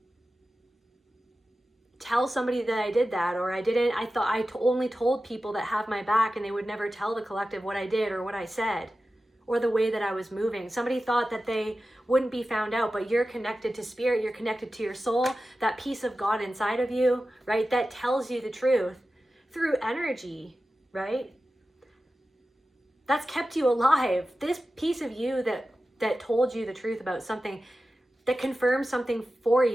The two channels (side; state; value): both; normal; correlation 0.94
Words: tell somebody that I did that, or I thought I only told people that have my back, and they would never tell the collective what I did or what I said or the way that I was moving. Somebody thought that they wouldn't be found out, but you're connected to spirit, you're connected to your soul, that piece of God inside of you, right? That tells you the truth through energy, right? That's kept you alive. This piece of you that that told you the truth about something, that confirmed something for